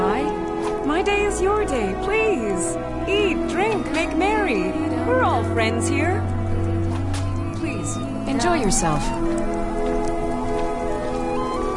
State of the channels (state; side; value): identical; both; correlation 1.00